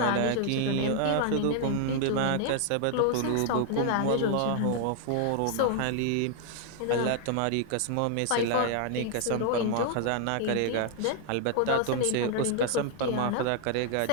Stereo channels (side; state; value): both; different; correlation 0.00